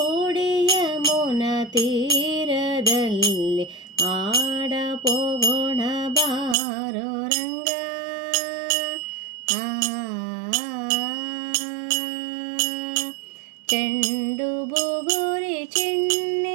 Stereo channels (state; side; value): drops out; left; at 6.6 s